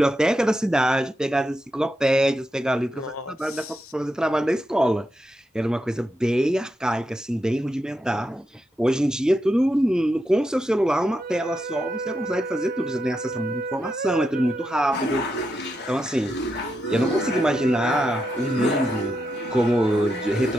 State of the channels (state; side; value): normal; both; correlation 0.85